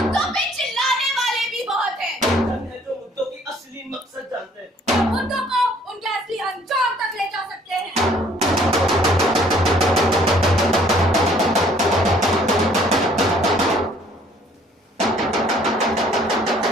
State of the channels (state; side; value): normal; both; correlation 0.59